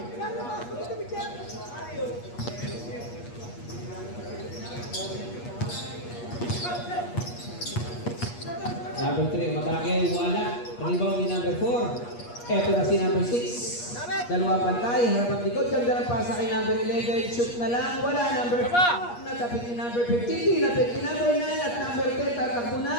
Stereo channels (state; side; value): late; right; 8.4 ms